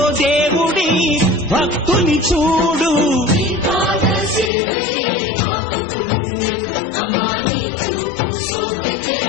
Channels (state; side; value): drops out; right; at 4.5 s